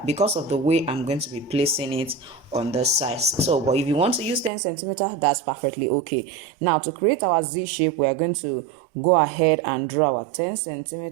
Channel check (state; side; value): drops out; left; at 4.5 s